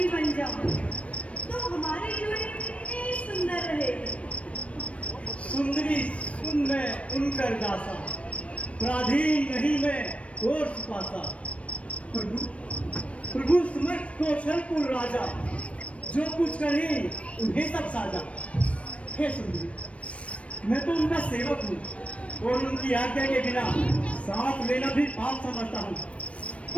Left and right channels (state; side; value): late; right; 0.063 ms